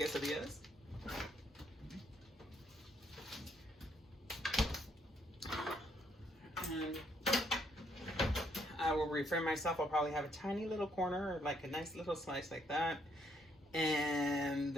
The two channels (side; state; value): both; normal; correlation 0.71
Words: And I will refrain myself. I'll probably have a tiny little corner, or like a nice little slice like that. And